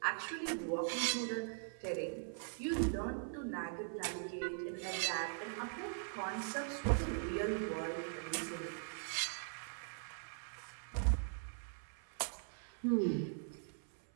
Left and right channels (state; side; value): silent; left; 50 dB below the other